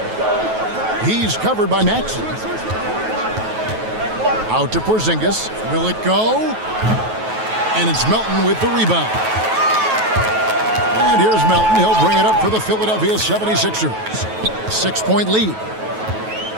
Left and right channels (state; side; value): late; left; 9.2 ms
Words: He's covered by Maxey. Out to Porzingis. Will it go? And it's Melton with the rebound. And here's Melton. He'll bring it up for the Philadelphia 76ers. 6-point lead.